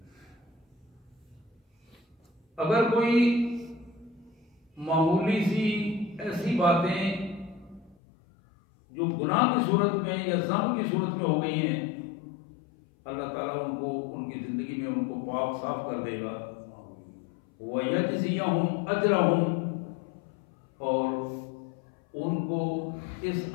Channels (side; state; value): right; drops out; at 8.0 s